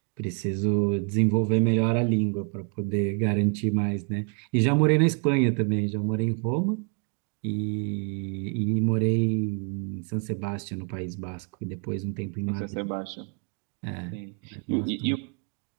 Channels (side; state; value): left; quieter; 39.6 dB